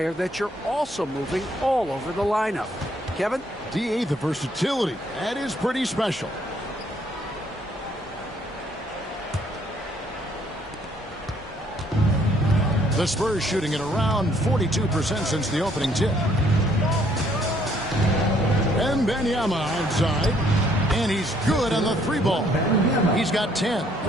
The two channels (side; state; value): both; normal; correlation 0.65